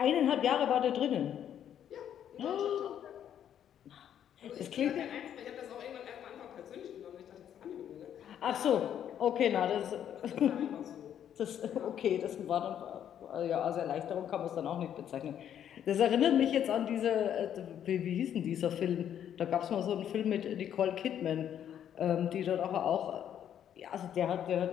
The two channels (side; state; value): right; quieter; 9.8 dB